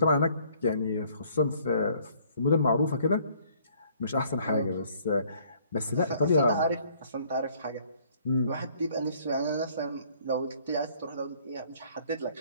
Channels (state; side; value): inverted; both; correlation -0.61